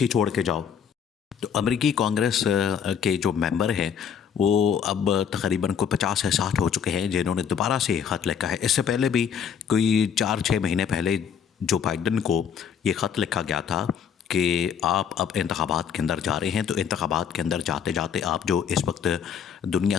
چھوڑ کے جاؤ۔ تو امریکی کانگریس کے جو ممبر ہیں وہ اب تقریباً کوئی 50 سے 60 ہو چکے ہیں جنہوں نے دوبارہ سے خط لکھا ہے۔ اس سے پہلے بھی کوئی 4-6 مہینے پہلے جو بائیڈن کو یہ خط لکھا گیا تھا کہ آپ اب انتخابات کے اندر جا رہے ہیں، تو انتخابات کے اندر جاتے جاتے آپ جو اس وقت دنیا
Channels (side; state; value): right; quieter; 7.7 dB